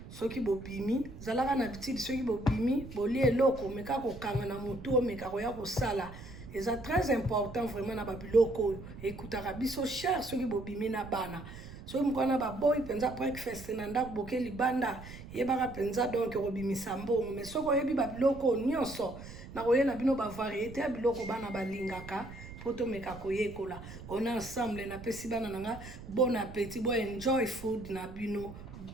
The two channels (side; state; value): right; noise; rumble, 14 dB below the sound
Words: soki bobimi zalaka na bitidi soki bobimi bolia eloko omeka kokanga na motu omeka koya kosala eza très important vraiment na babiloko oyo ekutaka biso cher soki bobimi na bana soki mokwana baboyi mpenza breakfast na ndako boke libanda yebaka mpenza donc kobimisa mbongo mais soki oyebi babiloko nyonso na koyela bino bavariété ya biloko bana balingaka po tomeka koyekola on ensemble napesi bana nanga bon appétit bo enjoy food na bino